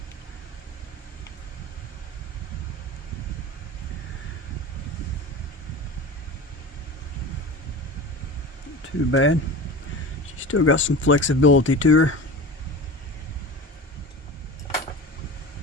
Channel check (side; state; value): both; normal; correlation 0.32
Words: Not too bad. She's still got some flexibility to her.